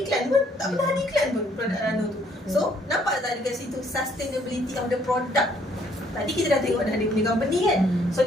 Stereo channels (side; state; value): both; normal; correlation 0.65